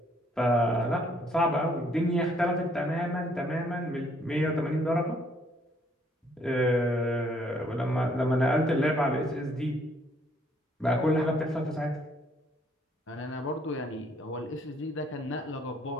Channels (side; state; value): both; normal; correlation 0.66